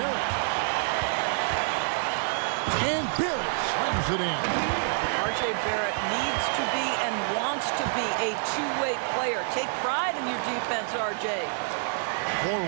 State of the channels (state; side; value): silent; left; digital silence